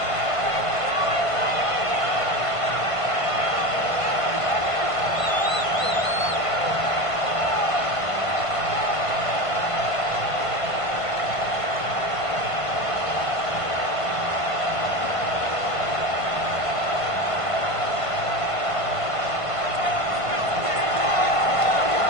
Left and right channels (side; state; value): right; late; 1.5 ms